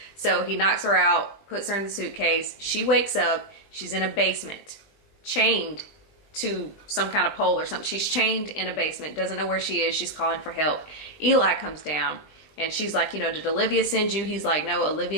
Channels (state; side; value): late; right; 20 ms